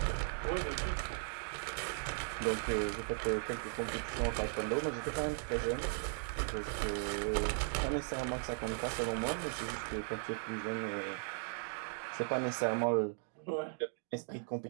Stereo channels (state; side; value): silent; left; 53 dB below the other